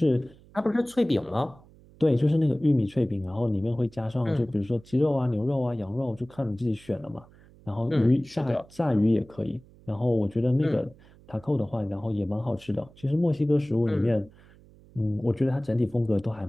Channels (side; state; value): right; noise; hum, 25 dB below the sound